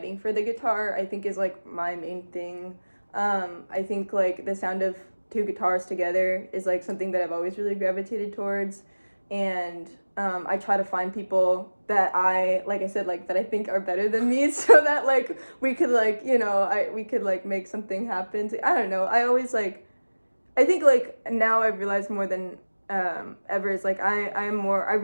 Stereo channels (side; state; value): both; inverted; correlation -1.00